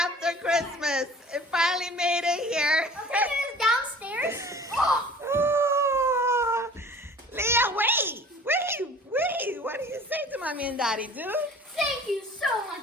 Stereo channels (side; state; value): both; normal; correlation 0.46